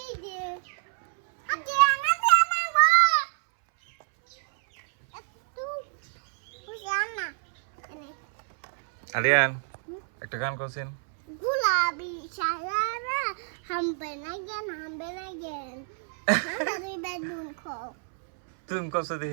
যে আগে আনা দে না গো একটু বুঝানা এনে আরিয়ান একটা গান করছেন। गुलाबी शायरा हम बनाएंगे আমরা দুই ভাই বোন খাও তুমি করছো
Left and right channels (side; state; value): left; silent; 60 dB below the other